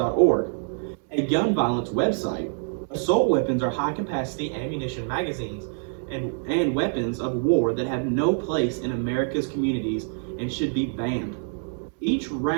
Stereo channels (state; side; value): silent; left; 61 dB below the other